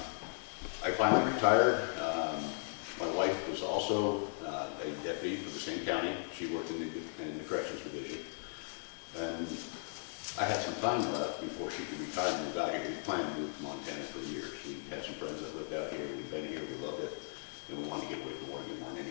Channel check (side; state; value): right; silent; digital silence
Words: I finally retired. My wife was also a deputy for the same county. She worked in the corrections division. And I had some time left before she could retire and we got here. We planned to move to Montana for years. We had some friends that lived out here. We've been here, we loved it, and we wanted to get away from Oregon more than